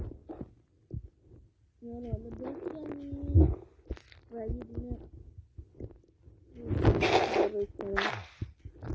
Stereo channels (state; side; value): identical; both; correlation 1.00